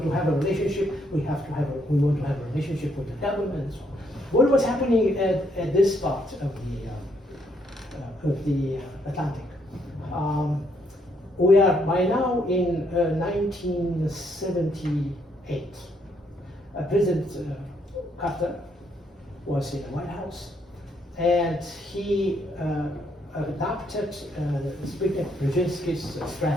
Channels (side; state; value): both; normal; correlation 0.72